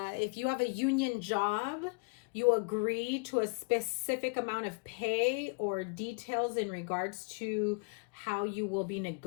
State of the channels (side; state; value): right; quieter; 34.0 dB